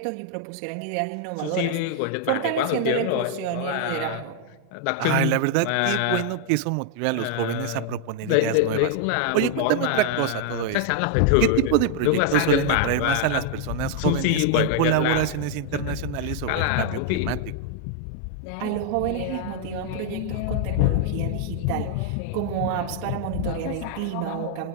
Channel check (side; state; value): both; different; correlation 0.00